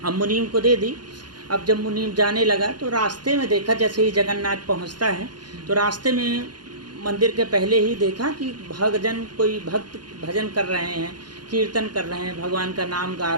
अब मुनीम को दे दी। अब जब मुनीम जाने लगा तो रास्ते में देखा, जैसे ही जगन्नाथ पहुँचता है तो रास्ते में मंदिर के पहले ही देखा कि कोई भक्त भजन कर रहे हैं, कीर्तन कर रहे हैं, भगवान का नाम गा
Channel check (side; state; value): left; late; 0.70 ms